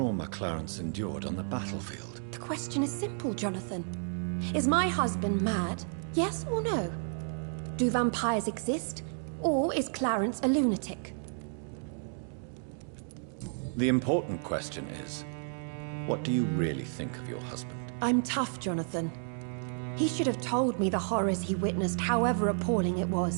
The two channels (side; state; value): left; silent; 57 dB below the other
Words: Clarence endured on the battlefield. The question is simple, Jonathan. Is my husband mad? Yes or no? Do vampires exist? Or is Clarence a lunatic? The important question is, what do you really think of your husband? I'm tough, Jonathan. He should have told me the horrors he witnessed, however appalling it